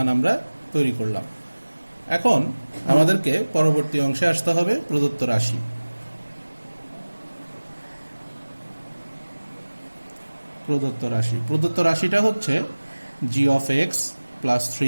আমরা তৈরি করলাম। এখন আমাদেরকে পরবর্তী অংশে আসতে হবে প্রদত্ত রাশি। প্রদত্ত রাশিটা হচ্ছে g of x plus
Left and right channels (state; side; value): inverted; both; correlation -1.00